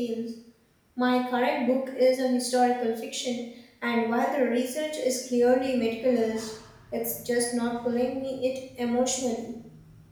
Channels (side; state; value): both; identical; correlation 1.00